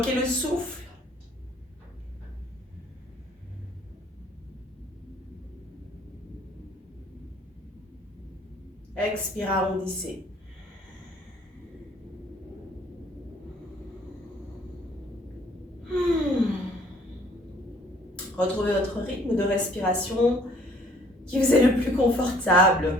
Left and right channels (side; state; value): both; normal; correlation 0.59